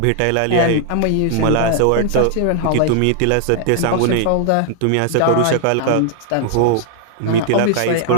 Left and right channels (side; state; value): both; different; correlation 0.00